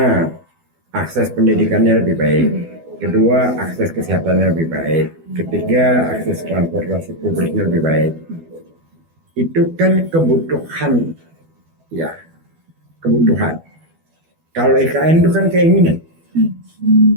akses pendidikannya lebih baik. Kedua, akses kesehatannya lebih baik. Ketiga, akses transportasi publiknya lebih baik. Itu kan kebutuhan. Ya, kebutuhan. Kalau IKN itu kan keinginan.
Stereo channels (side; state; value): left; late; 12 ms